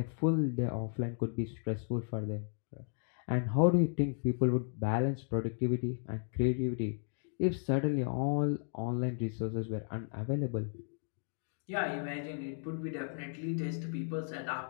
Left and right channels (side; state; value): right; silent; 55 dB below the other